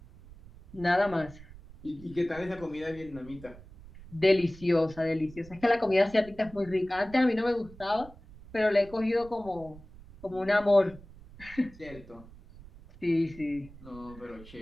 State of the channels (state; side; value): noise; right; rumble, 19 dB below the sound